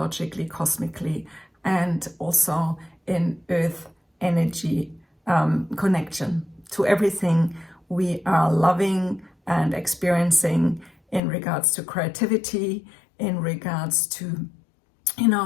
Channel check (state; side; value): drops out; right; at 11.2 s